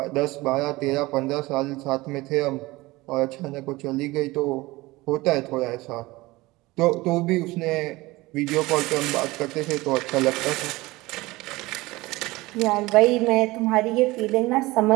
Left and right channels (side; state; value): left; quieter; 20.6 dB